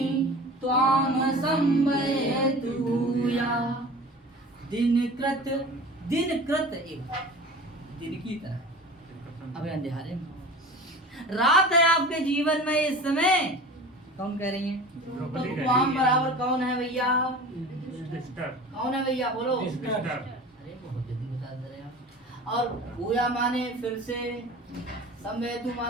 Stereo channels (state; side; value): normal; both; correlation 0.38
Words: त्वां संभयतु या। दिनकृत, दिनकृत एक दिन की तरह, अबे अंधेरे में रात है आपके जीवन में इस समय। कौन कह रही हैं? तो त्वां बराबर कौन है भैया? कौन है भैया? बोलो। अरे बहुत जल्दी बता दे रहे आप। और भूया माने फिर से, संवेदु